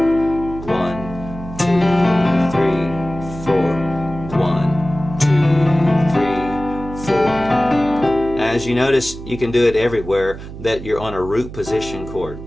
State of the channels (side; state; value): right; noise; hum, 12 dB below the sound